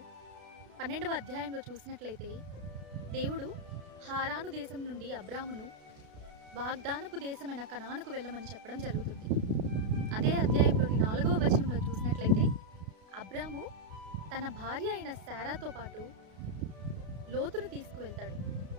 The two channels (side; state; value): left; late; 32 ms